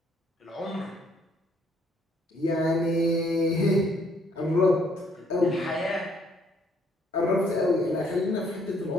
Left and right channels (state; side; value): normal; both; correlation 0.66